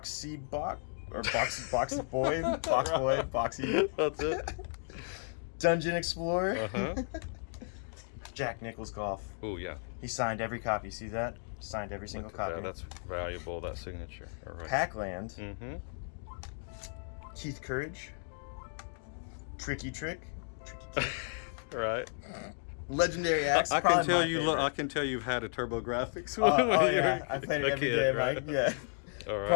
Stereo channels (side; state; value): right; silent; 55 dB below the other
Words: Boy, Boxy. That's it. Dungeon Explorer. Jack Nicklaus Golf. Oh yeah. He signed every copy. See that? Signed every single copy. Yeah, that's valuable. That signature. All right. Pac-Land. Keith Courage. Tricky Trick. Right. Legendary Axe. I can tell you. I can tell you've had a Turbografx. Yeah, I played it every day, Mike. Right? Yeah. All right.